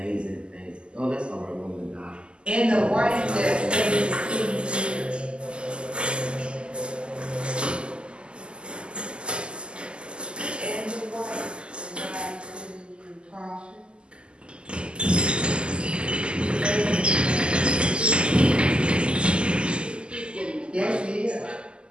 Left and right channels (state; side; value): late; left; 0.050 ms